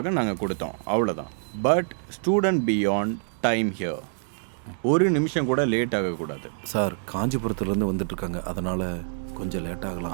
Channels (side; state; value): left; silent; digital silence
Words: நாங்கள் கொடுத்தோம், அவ்வளோதான். But student beyond time here. ஒரு நிமிஷம் கூட லேட் ஆகக்கூடாது. சார் காஞ்சிபுரத்துலேருந்து வந்துட்டுருக்காங்க, அதனால் கொஞ்சம் லேட் ஆகலாம்.